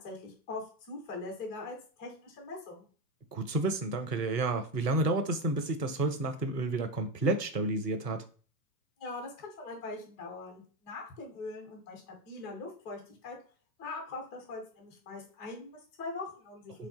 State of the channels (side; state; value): right; late; 1.4 ms